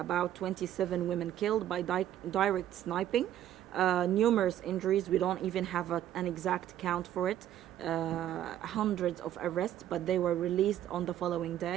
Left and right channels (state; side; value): quieter; left; 11.7 dB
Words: 27 women killed by direct sniping. Numerous injuries. We don't even have an exact count for it. Hundreds of arrests, but they were released on the following